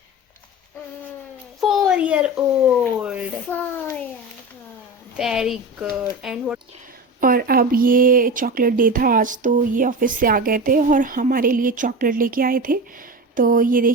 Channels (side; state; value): both; normal; correlation 0.27